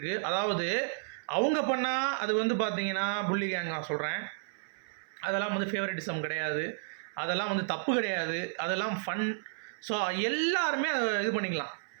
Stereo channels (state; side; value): silent; left; 57 dB below the other